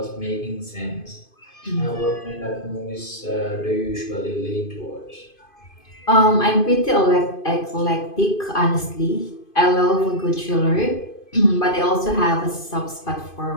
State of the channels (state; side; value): late; right; 2.5 ms